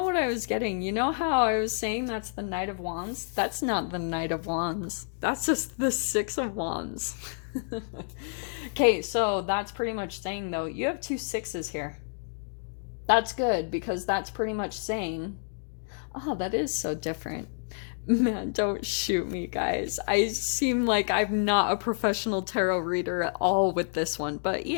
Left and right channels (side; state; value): right; silent; digital silence